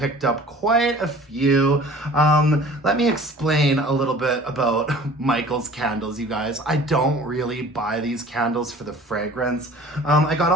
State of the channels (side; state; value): both; normal; correlation 0.47